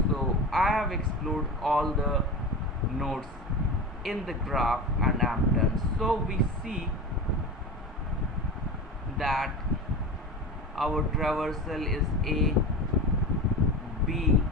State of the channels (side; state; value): both; normal; correlation 0.28